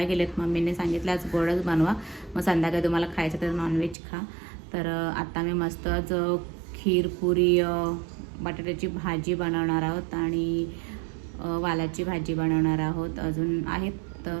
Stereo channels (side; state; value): left; drops out; at 4.0 s